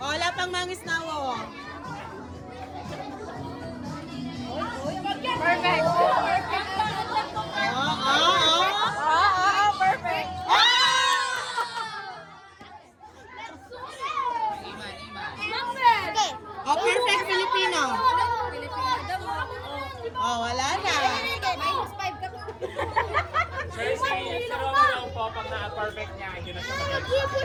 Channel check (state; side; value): identical; both; correlation 1.00